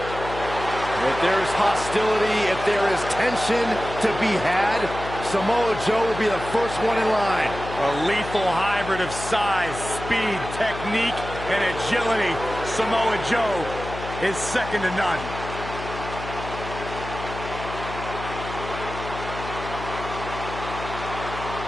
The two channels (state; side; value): noise; left; hum, 10 dB below the sound